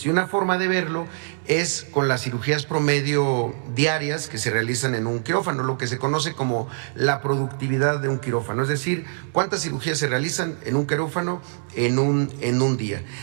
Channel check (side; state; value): left; silent; digital silence